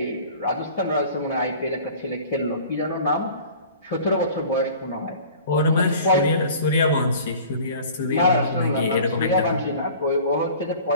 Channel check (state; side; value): inverted; both; correlation -0.45